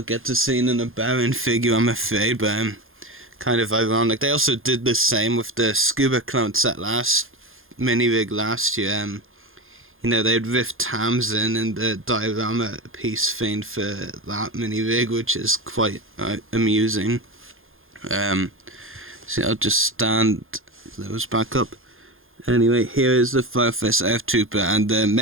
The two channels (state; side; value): late; left; 0.60 ms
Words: to seeing an Unbound figure, I'm afraid, but kind of ironic. They also did the same with the Scuba Clone set mini-rig last year. You know, they'd riffed Tamsin in the diorama piece thing for that mini-rig, which is quite amusing. So I'll just stand those back up. Anyway, here is the Firefest ARF Trooper, and the